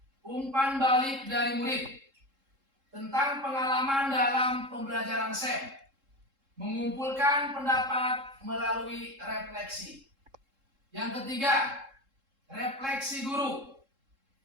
umpan balik dari murid tentang pengalaman dalam pembelajaran SEM, mengumpulkan pendapat melalui refleksi. Yang ketiga, refleksi guru.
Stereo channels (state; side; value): late; left; 3.7 ms